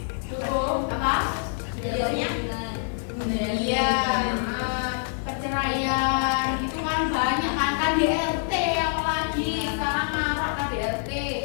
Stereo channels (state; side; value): silent; right; digital silence